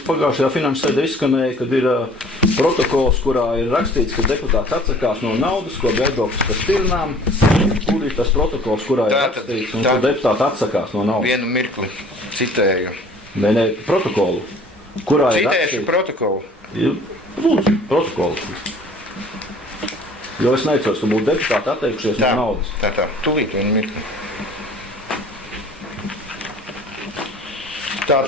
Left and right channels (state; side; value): normal; both; correlation 0.51